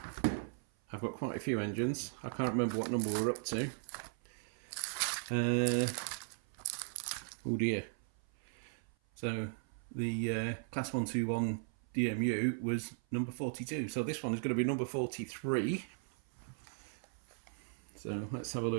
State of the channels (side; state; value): left; silent; 53 dB below the other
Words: a few engines. I can't remember what number we're up to. Oh dear. So the class 121 DMU was number 42. So this one is going to be number 43. So let's have a